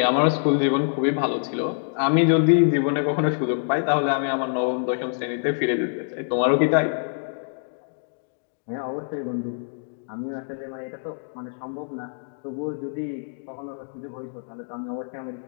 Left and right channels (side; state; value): right; silent; digital silence